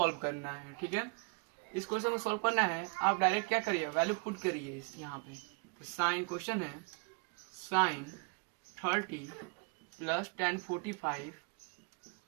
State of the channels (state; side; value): quieter; left; 33.8 dB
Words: करना है। ठीक है, इस question को सॉल्व करना है, आप डायरेक्ट क्या करिए वैल्यू पुट करिए यहाँ पे। तो साइन क्वेश्चन है sine 30 plus tan 45